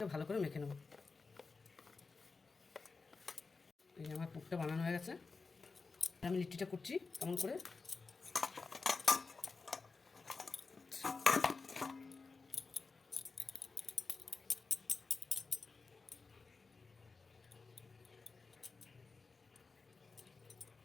ভালো করে মেখে নেব। এই আমার পুরটা বানানো হয়ে গেছে। আমি লিট্টিটা করছি কেমন করে।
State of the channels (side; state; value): right; quieter; 4.3 dB